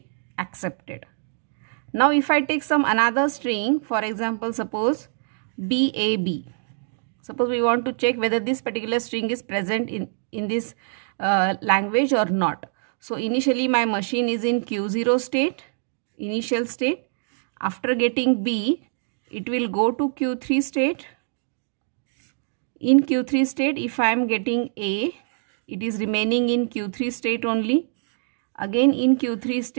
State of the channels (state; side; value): silent; left; digital silence